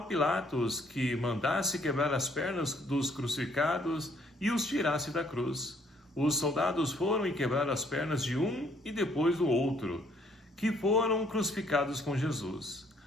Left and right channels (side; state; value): both; normal; correlation 0.65